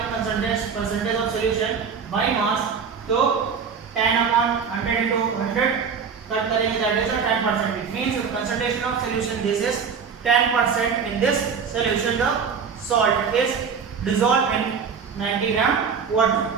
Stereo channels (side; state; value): left; quieter; 6.2 dB